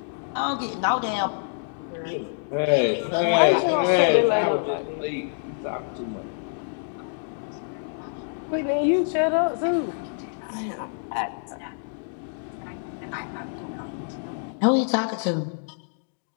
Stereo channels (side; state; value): right; silent; digital silence